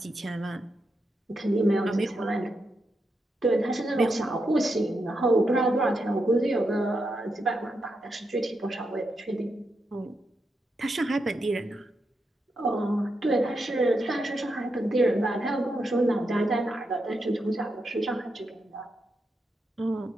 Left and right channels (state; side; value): normal; both; correlation 0.84